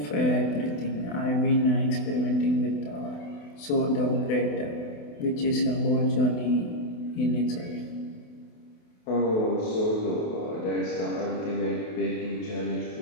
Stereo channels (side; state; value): right; late; 28 ms